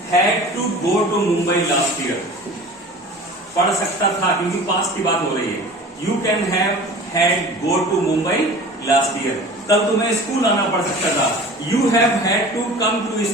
had to go to Mumbai last year. पढ़ सकता था क्योंकि पास्ट की बात हो रही है। You can have had go to Mumbai last year. कल तुम्हें स्कूल आना पड़ सकता था, you have had to come to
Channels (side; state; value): both; normal; correlation 0.40